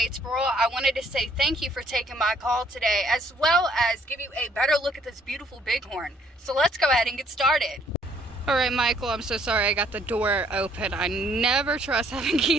I wanted to say thank you for taking my call today, as well as give you a better look at this beautiful Bighorn. So let's go ahead and get started. All right, Michael, I'm so sorry I got the door open. I never trust having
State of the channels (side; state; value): both; normal; correlation 0.65